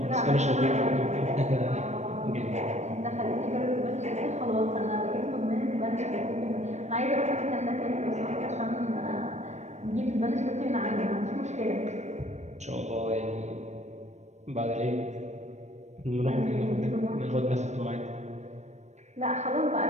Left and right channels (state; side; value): late; left; 0.33 ms